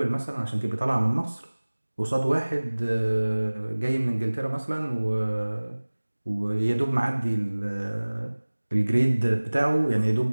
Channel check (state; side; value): inverted; both; correlation -1.00